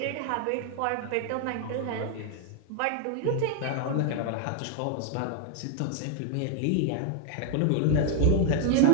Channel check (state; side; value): different; both; correlation 0.00